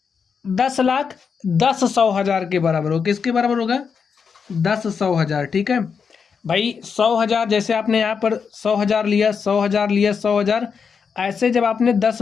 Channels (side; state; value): right; quieter; 6.1 dB